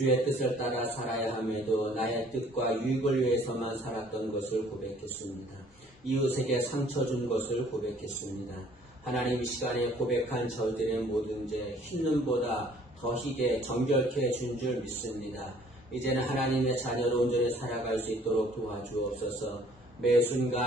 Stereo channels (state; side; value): normal; both; correlation 0.57